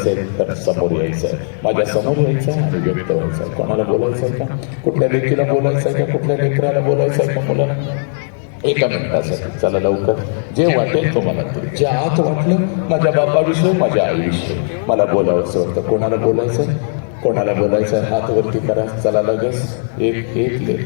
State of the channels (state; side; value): silent; right; 68 dB below the other